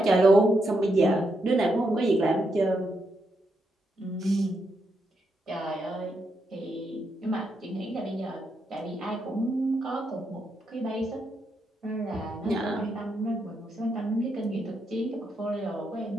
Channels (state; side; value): normal; both; correlation 0.81